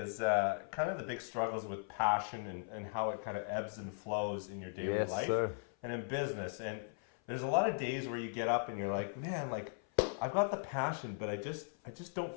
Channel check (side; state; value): right; silent; 52 dB below the other